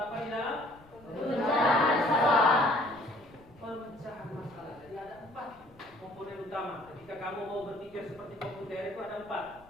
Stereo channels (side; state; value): left; noise; rumble, 25 dB below the sound